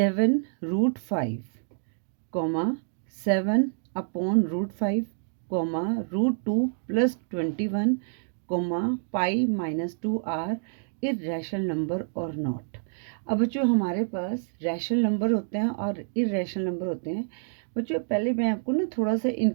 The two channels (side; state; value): left; silent; digital silence